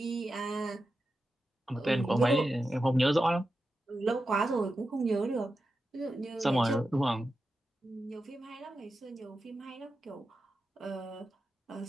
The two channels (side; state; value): both; normal; correlation 0.90